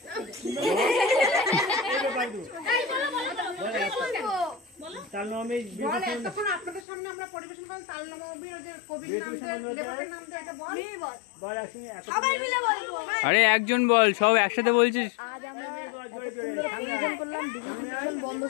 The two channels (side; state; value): right; drops out; at 6.9 s